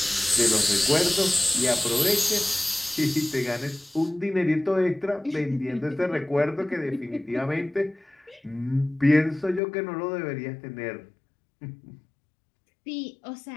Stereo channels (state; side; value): drops out; right; at 9.6 s